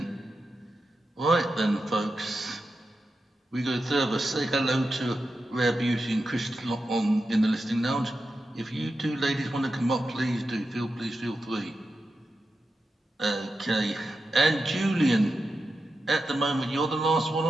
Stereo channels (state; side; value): normal; both; correlation 0.90